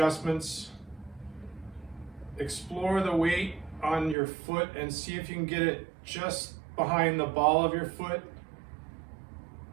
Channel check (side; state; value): left; drops out; at 4.2 s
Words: Explore the weight on your foot and see if you can get it just behind the ball of your foot,